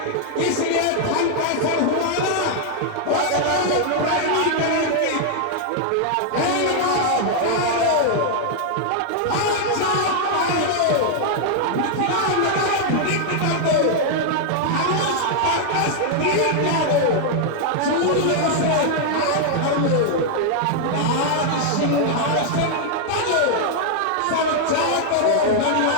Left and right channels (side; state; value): both; different; correlation 0.00